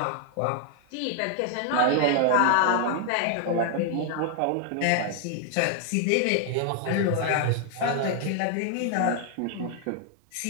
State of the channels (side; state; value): both; different; correlation 0.00